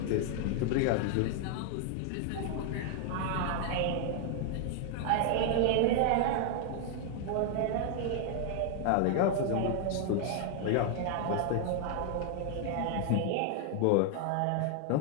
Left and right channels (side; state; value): both; different; correlation 0.00